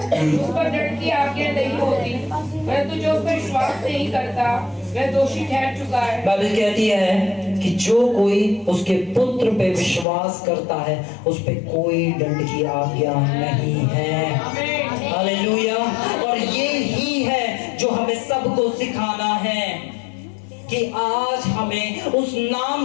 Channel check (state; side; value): drops out; right; at 10.1 s